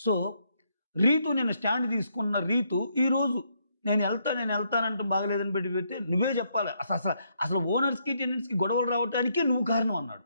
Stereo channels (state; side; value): inverted; both; correlation -0.74